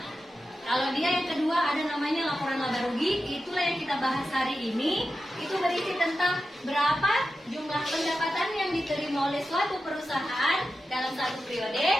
Kalau dia yang kedua ada namanya laporan laba rugi, itulah yang kita bahas hari ini. Itu berisi tentang berapa jumlah pendapatan yang diterima oleh suatu perusahaan dalam satu periode,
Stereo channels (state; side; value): normal; both; correlation 0.91